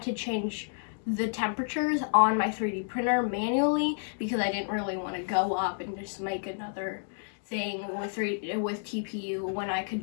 to change the temperatures on my 3D printer manually because I didn't really want to go up and just make another thing with TPU when I could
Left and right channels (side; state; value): right; silent; digital silence